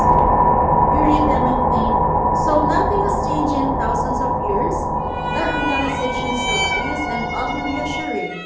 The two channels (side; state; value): both; identical; correlation 1.00